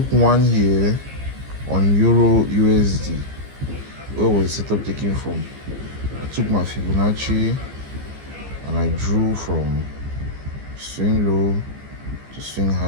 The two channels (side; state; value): left; late; 15 ms